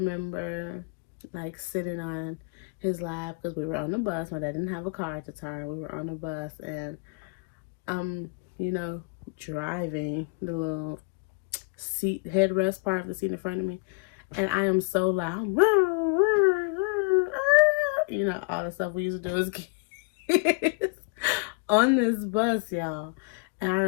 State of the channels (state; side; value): quieter; right; 31.8 dB